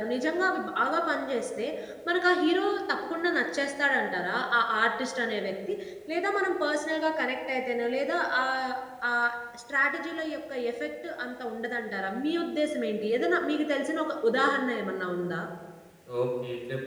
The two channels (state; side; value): identical; both; correlation 1.00